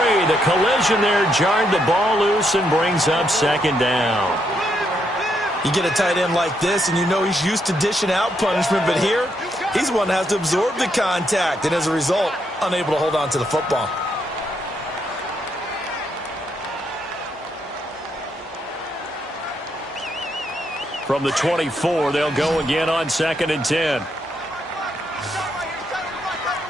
The collision there jarred the ball loose and brings up 2nd down. You get a tight end like this, and you know he's used to dishing out punishment, but here, he's one that has to absorb the contact, and as a result, unable to hold on to the football. From the 24, they'll go again on 2nd and 10.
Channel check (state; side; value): normal; both; correlation 0.77